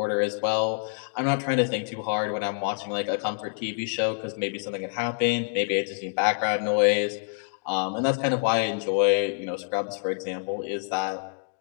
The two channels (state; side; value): silent; right; 60 dB below the other